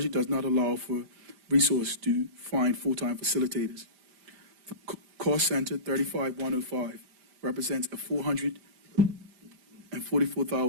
does not allow for resources to find full-time facilitators. The cost center 35105 represents a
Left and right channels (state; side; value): late; left; 5.0 ms